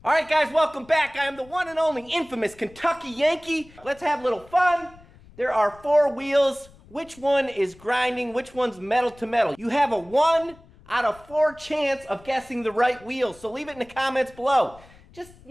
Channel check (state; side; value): noise; left; rumble, 24 dB below the sound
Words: Alright guys, welcome back. I am the one and only infamous Kentucky Yankee. Let's have a little fun. There are 4 wheels. Which one is grinding? Which one's metal to metal? You have a 1 out of 4 chance of guessing the right wheel. So leave it in the comments below. Just,